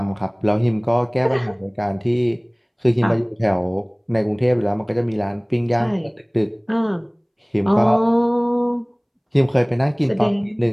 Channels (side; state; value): both; identical; correlation 1.00